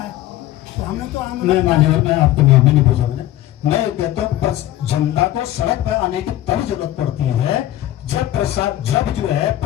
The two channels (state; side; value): quieter; right; 14.1 dB